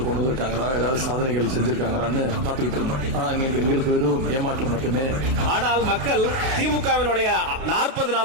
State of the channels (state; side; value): late; left; 33 ms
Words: கொண்டு வந்திருக்காங்களா, ஏதாவது சாதனைகள் செஞ்சிருக்காங்களான்னு காத்துக்கிட்டு இருந்தோம். ஆனா எங்களுக்கு வெறும் ஏமாற்றம் மட்டுமே. ஆனால் மக்கள் திமுகவினுடைய 40